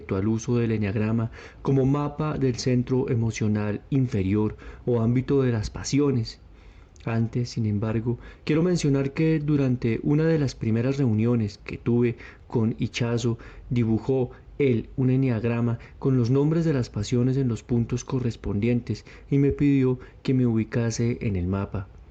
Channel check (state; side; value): identical; both; correlation 1.00